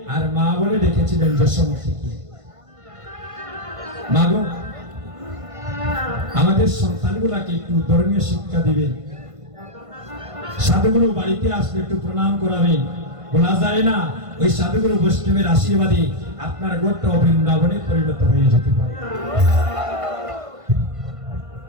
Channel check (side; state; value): left; late; 1.5 ms